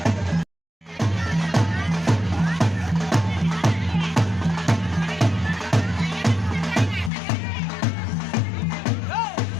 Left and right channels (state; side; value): drops out; right; at 7.1 s